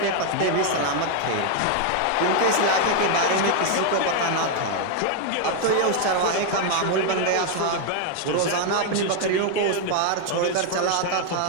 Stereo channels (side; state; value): both; different; correlation 0.00